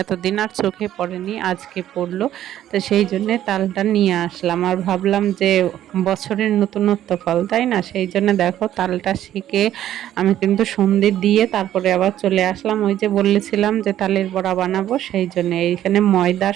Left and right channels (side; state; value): left; quieter; 12.0 dB